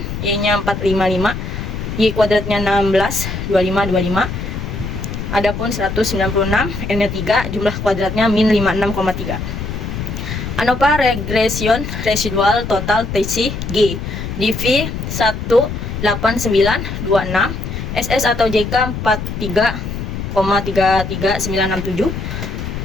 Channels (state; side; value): noise; left; rumble, 6 dB below the sound